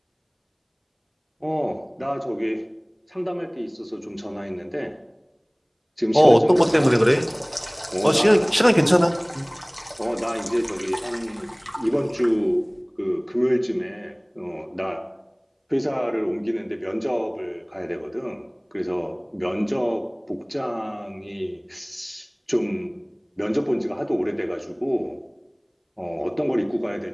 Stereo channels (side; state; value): both; identical; correlation 1.00